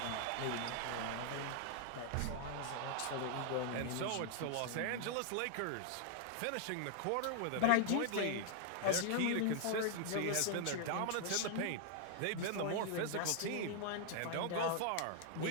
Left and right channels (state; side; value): different; both; correlation 0.00